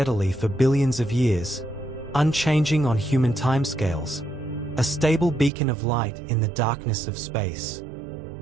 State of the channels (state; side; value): drops out; left; at 5.5 s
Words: for billions of years, unchanging on human timescales, a stable beacon of light in the darkness of space.